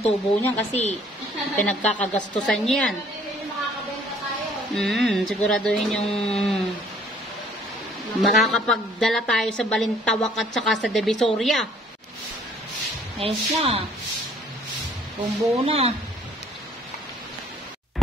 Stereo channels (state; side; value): normal; both; correlation 0.60